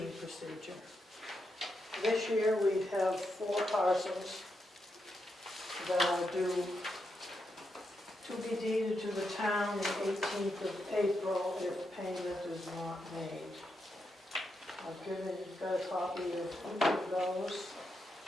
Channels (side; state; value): both; normal; correlation 0.84